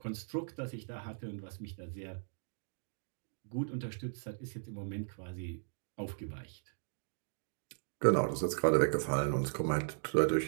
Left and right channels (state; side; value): silent; left; digital silence